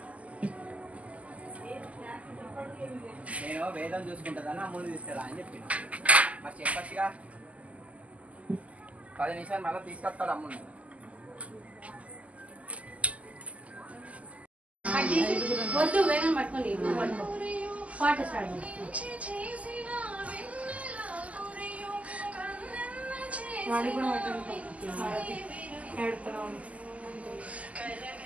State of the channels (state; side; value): late; left; 0.069 ms